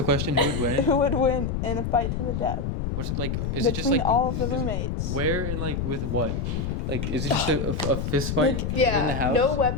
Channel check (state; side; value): noise; left; rumble, 2 dB below the sound